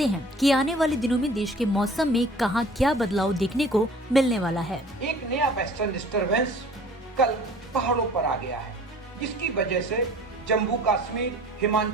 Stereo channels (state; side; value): normal; both; correlation 0.48